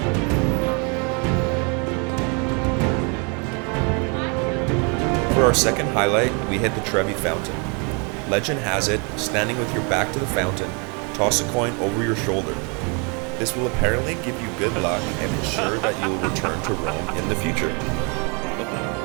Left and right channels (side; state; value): left; quieter; 34.0 dB